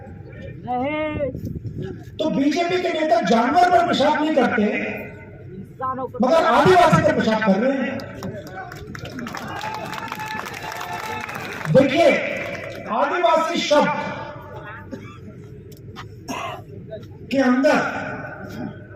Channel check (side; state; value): both; identical; correlation 1.00